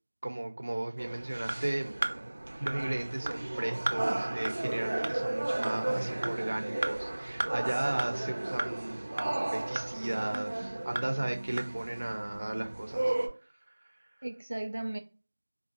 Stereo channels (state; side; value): inverted; both; correlation -1.00